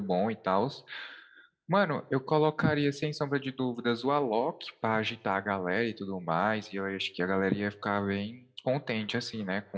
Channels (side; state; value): both; identical; correlation 1.00